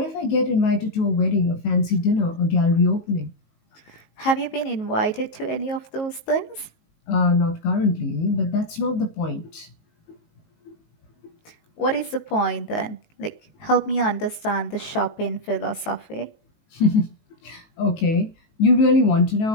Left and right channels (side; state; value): right; late; 19 ms